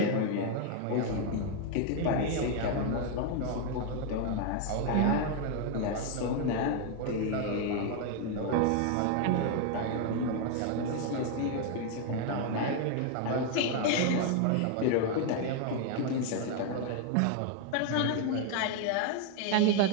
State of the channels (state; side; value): different; both; correlation 0.01